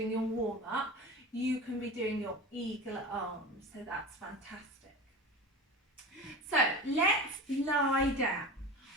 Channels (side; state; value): both; normal; correlation 0.31